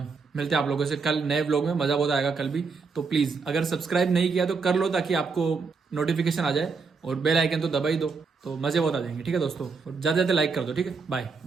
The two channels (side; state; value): left; quieter; 4.8 dB